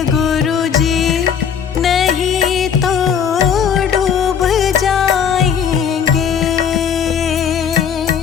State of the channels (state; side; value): quieter; right; 7.6 dB